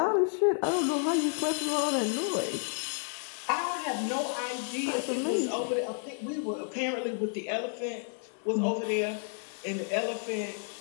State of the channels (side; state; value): right; silent; 57 dB below the other